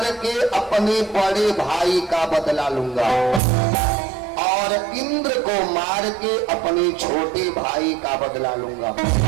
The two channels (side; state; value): left; drops out; at 3.4 s